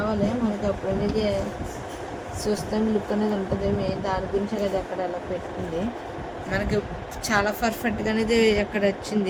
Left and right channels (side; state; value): both; identical; correlation 1.00